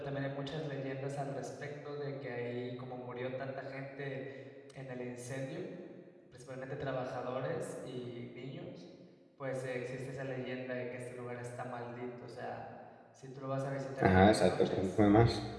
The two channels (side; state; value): both; identical; correlation 1.00